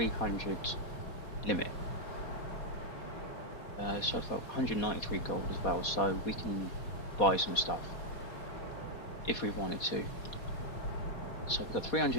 limit. So I've got 193 gold as well, so we can buy some stuff if we wanted to. So we've got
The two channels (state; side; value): late; right; 4.2 ms